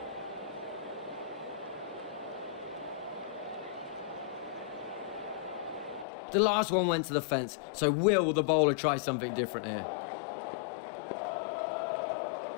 The last one went to the fence, so will the bowler try something different here?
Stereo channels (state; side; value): drops out; right; at 6.1 s